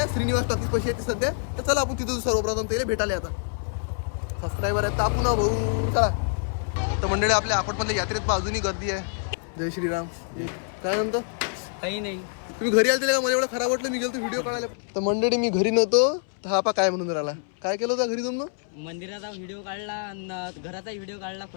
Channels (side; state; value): right; silent; 61 dB below the other